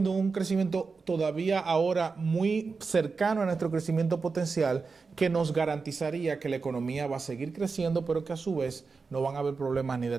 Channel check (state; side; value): quieter; left; 4.6 dB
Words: un crecimiento todavía ahora muy cercano a nuestro crecimiento potencial, que nos garantizaría que la economía va a seguir creciendo, pero que a su vez no van a haber problemas ni